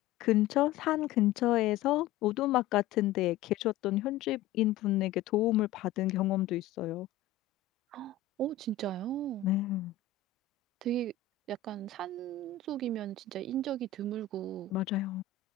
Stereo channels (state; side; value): quieter; right; 8.2 dB